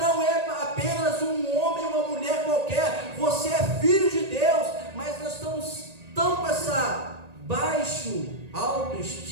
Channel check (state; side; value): late; left; 1.8 ms